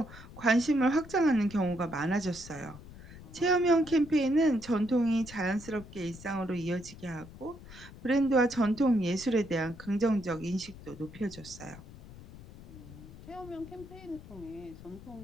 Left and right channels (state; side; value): noise; left; rumble, 17 dB below the sound